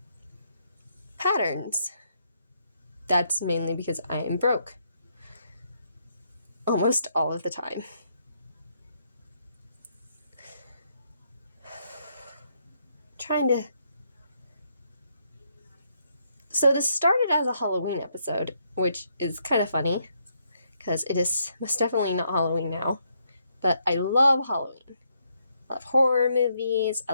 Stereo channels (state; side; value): inverted; both; correlation -0.75